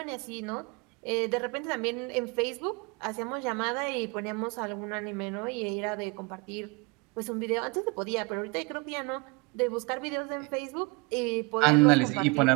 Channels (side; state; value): left; quieter; 28.2 dB